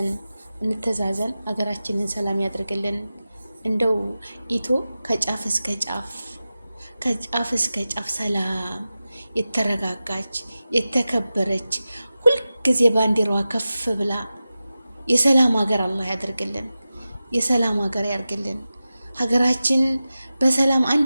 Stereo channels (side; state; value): both; inverted; correlation -0.94